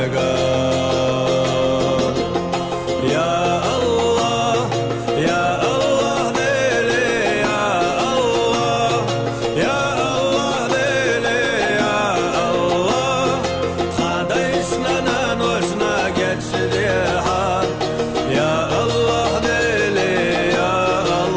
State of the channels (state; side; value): identical; both; correlation 1.00